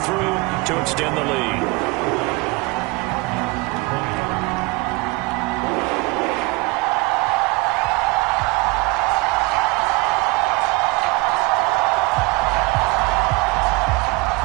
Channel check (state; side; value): quieter; left; 24.8 dB